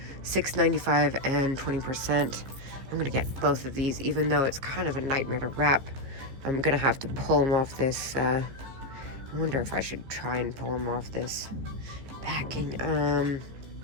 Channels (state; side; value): late; left; 14 ms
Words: $6.95 and 20%. I'm gonna get both of these, even though it's kind of a nightmare to wrap. I'm gonna have to pull them off this, I wonder if I should try and pull them off this packing.